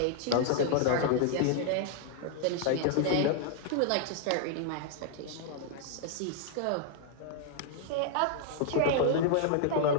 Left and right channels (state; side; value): different; both; correlation -0.01